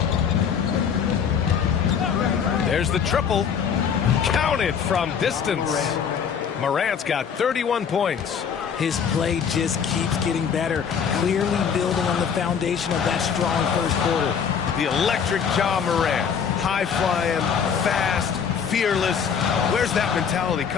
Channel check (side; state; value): right; quieter; 7.1 dB